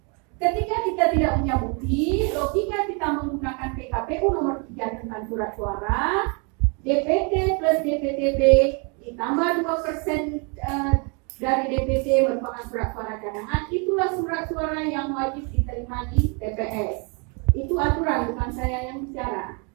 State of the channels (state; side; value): quieter; left; 34.9 dB